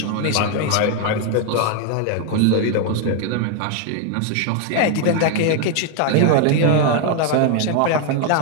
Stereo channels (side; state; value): both; different; correlation 0.00